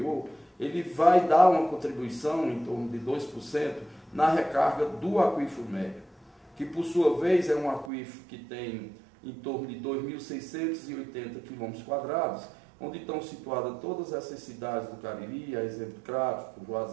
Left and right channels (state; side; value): drops out; left; at 7.9 s